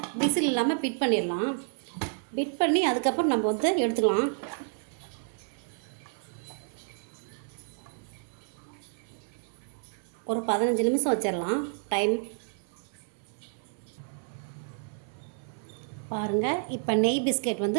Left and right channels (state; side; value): silent; left; 58 dB below the other